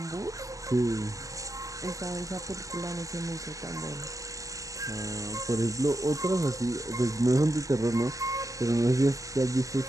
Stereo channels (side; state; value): left; late; 0.16 ms